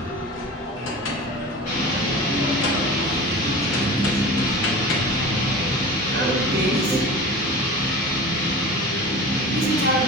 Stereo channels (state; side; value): normal; both; correlation 0.35